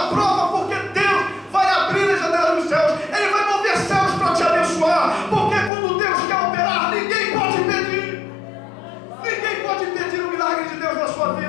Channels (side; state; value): right; drops out; at 5.7 s